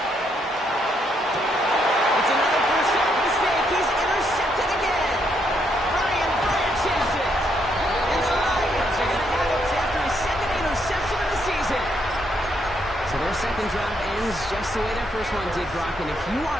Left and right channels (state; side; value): normal; both; correlation 0.75